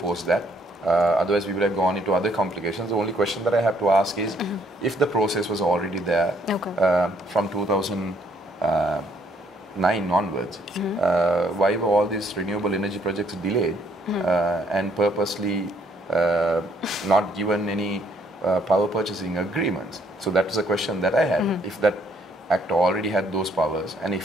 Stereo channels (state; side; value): normal; both; correlation 0.67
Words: that. Otherwise, we would have gone into other complications. The only question that I have to ask is, if the process was already there from 2009 onwards, why were all these renewable energy projects delayed and purposely not given any power purchasing agreements? So that was a question that I had. If that Act already had those powers, and